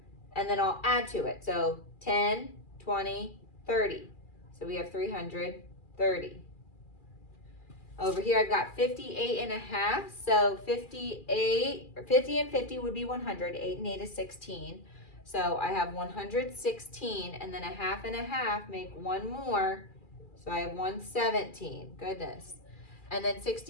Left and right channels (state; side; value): late; right; 2.4 ms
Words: And then I'll add to it. So 10, 20, 30. So we have 330. Over here, I've got 58.5. So 50 and 50 would be 100. 8 and 8 is 16. So I have 116, and then a half and a half make one more. So I have 117. Goodness. And then